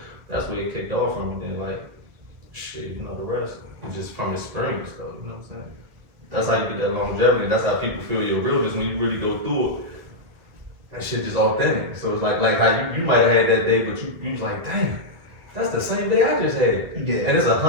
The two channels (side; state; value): left; late; 2.2 ms